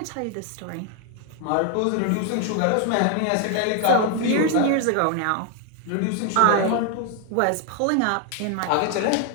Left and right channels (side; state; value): both; different; correlation 0.01